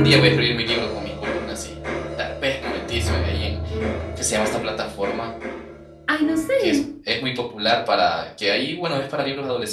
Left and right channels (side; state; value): both; identical; correlation 1.00